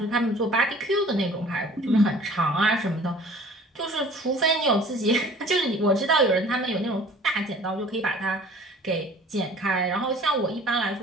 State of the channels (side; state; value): both; normal; correlation 0.49